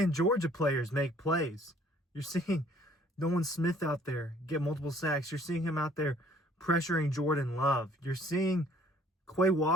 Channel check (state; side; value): normal; both; correlation 0.58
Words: Georgia players make plays. You're seeing Nolan Smith out there get multiple sacks. You're seeing him out there pressuring Jordan Love. You're seeing Quay